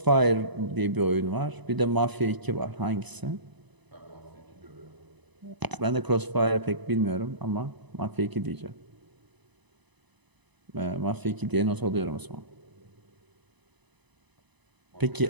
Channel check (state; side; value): late; left; 1.0 ms